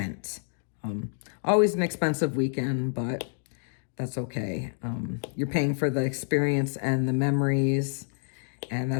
Always an expensive weekend, but that's okay. You're paying for the experience and the memories, and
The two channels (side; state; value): right; silent; digital silence